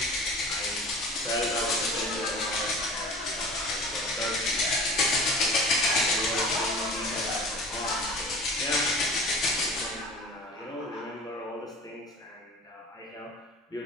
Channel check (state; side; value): normal; both; correlation 0.39